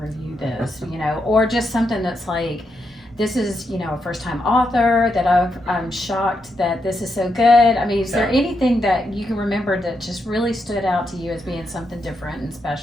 review this, or just something that's like, this is, a first-time author that I'm shocked that this is so good. I mean, is there anything that you can remember that just really stood out to you as being something different and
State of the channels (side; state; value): both; normal; correlation 0.82